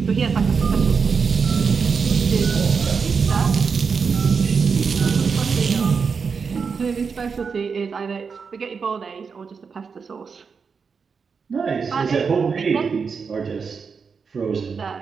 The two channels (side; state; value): left; quieter; 5.6 dB